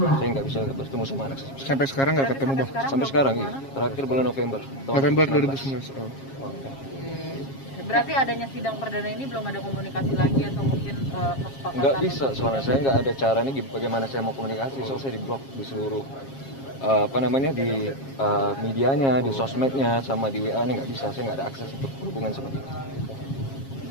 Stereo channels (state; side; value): late; right; 7.4 ms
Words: saya nggak bisa bertemu sama anak saya. Sampai sekarang nggak ketemu Bang? Sampai sekarang iya. Terakhir bulan November. November 2019. Oh. Berarti adanya sidang perdana ini belum ada komunikasi lagi atau mungkin kesepakatan? Nggak bisa, soalnya saya nggak ada cara nih bagaimana saya mau komunikasi. Soalnya saya diblok di seluruh di medianya, di sosmednya, sama di WA-nya nggak bisa. Saya nggak ada akses untuk hubungan seperti itu.